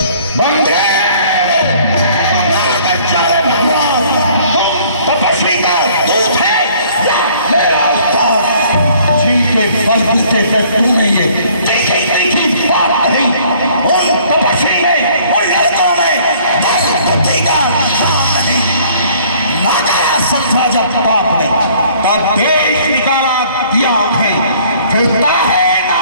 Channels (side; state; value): both; inverted; correlation -0.57